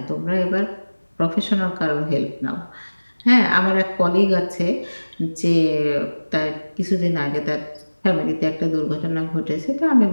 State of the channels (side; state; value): both; inverted; correlation -1.00